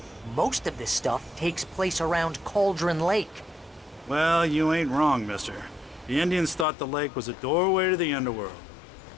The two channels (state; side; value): drops out; right; at 6.7 s